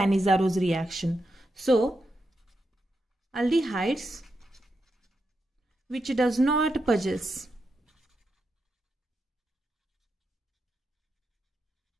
reaction. So aldehydes which does not possess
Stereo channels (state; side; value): normal; both; correlation 0.85